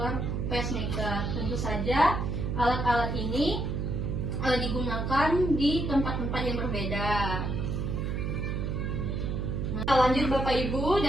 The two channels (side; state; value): right; noise; hum, 1 dB below the sound